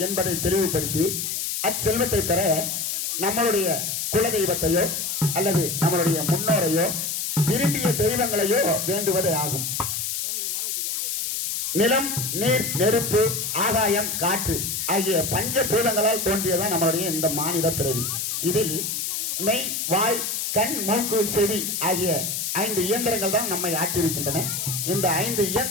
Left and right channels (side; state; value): left; noise; hiss, 2 dB below the sound